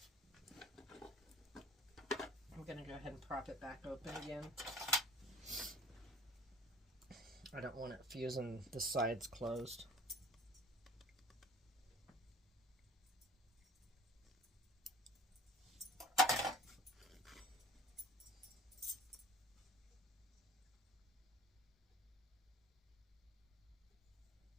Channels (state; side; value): normal; both; correlation 0.48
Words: I'm going to go ahead and prop it back open again. I don't want it fusing the sides closed.